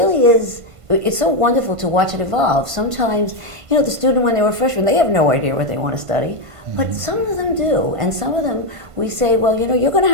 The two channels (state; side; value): late; left; 1.5 ms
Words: is, it's so wonderful to watch it evolve. Sometimes, the student when they were freshmen, they have no idea what they want to study. But some of them do, and some of them we say, well, you're going to